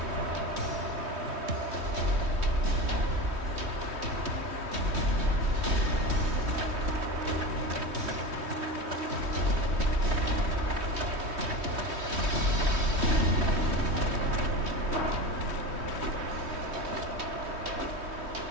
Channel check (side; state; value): left; late; 3.2 ms